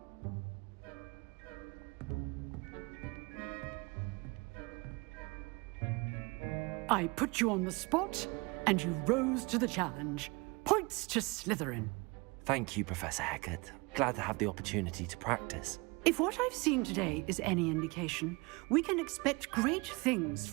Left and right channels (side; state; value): left; quieter; 26.8 dB